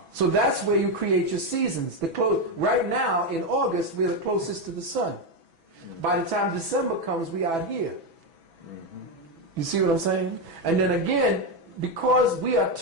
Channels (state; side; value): late; left; 6.1 ms